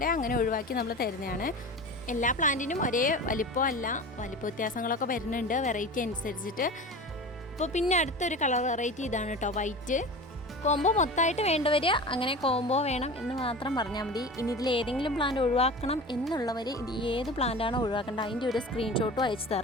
അങ്ങനെ ഒഴിവാക്കി നമ്മൾ തരുന്നതാണ്. എല്ലാ പ്ലാന്റിനും ഒരേ വലിപ്പമല്ല, വലിപ്പ വ്യത്യാസങ്ങളൊക്കെ വരുന്നുണ്ട് വെറൈറ്റി അനുസരിച്ചിട്ട്. അപ്പോൾ പിന്നെ അടുത്തൊരു കളർ വെറൈറ്റി ഇതാണ് കേട്ടോ, വൈറ്റ്. കോംബോ മൊത്തമായിട്ട് വേണ്ടവർ അങ്ങനെ കോംബോ വേണം എന്ന് മാത്രം പറഞ്ഞാൽ മതി. ഇനി ഇതിൽ ഏതെങ്കിലും പ്ലാന്റ് ഒഴിവാക്കണം എന്നുള്ളവർ ഇത് ഏത് പ്ലാന്റാണോ ഒഴിവാക്കേണ്ടത് അതിൻ്റെ ഒരു സ്ക്രീൻഷോട്ടും അയച്ചു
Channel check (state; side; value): normal; both; correlation 0.33